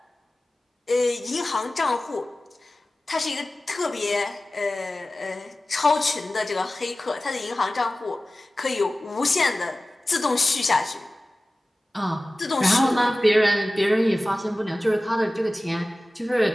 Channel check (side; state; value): both; normal; correlation 0.96